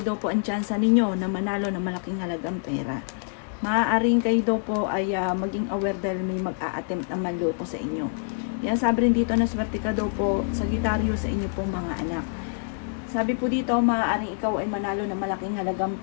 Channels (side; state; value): right; silent; digital silence